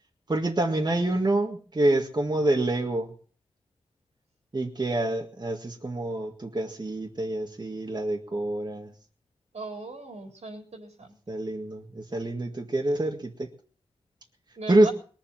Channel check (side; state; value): both; normal; correlation 0.86